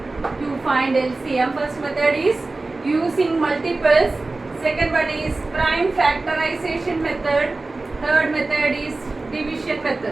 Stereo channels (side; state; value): left; quieter; 3.3 dB